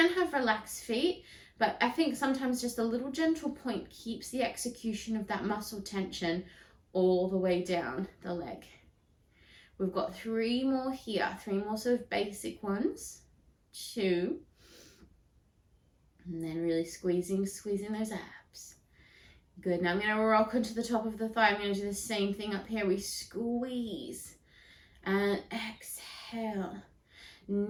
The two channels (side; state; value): both; identical; correlation 1.00